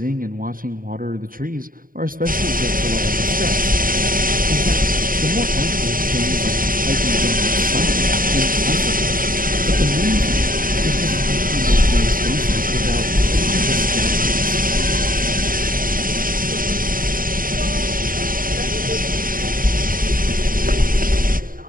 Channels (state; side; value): late; left; 0.41 ms